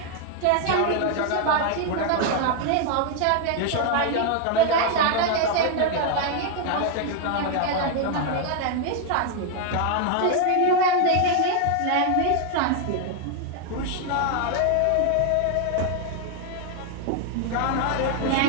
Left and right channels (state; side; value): different; both; correlation 0.00